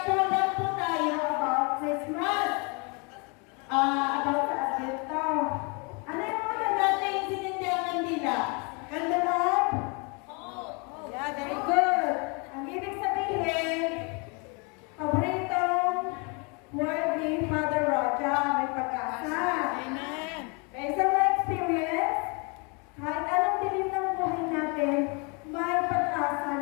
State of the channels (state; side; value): quieter; right; 32.4 dB